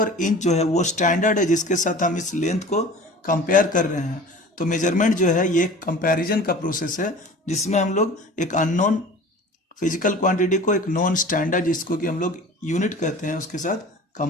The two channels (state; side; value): normal; both; correlation 0.41